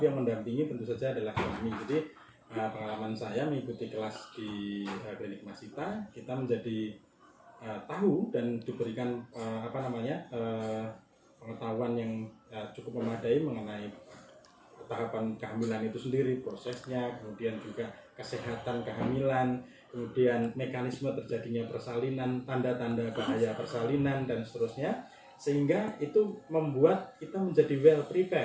yang mendampingi tentu saja adalah suami. Jadi pengalaman saya mengikuti kelas di klinik Masita, kita menjadi tahu dan diberikan pengetahuan yang cukup memadai mengenai tahapan kehamilan itu sendiri, prosesnya, kemudian juga kesehatan kehamilan, kemudian mekanisme terjadinya persalinan, tanda-tanda bahaya persalinan, dan seterusnya, sehingga itu membuat kita menjadi well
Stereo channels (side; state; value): both; identical; correlation 1.00